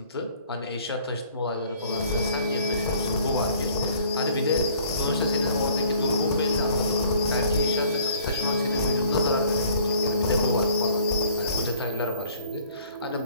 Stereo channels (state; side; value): inverted; both; correlation -0.55